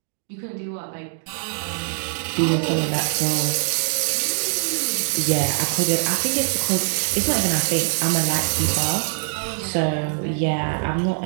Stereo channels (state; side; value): silent; left; digital silence